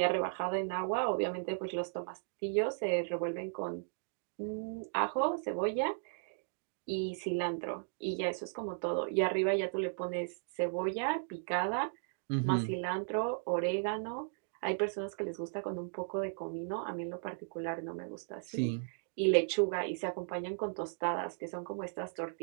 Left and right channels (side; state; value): left; silent; digital silence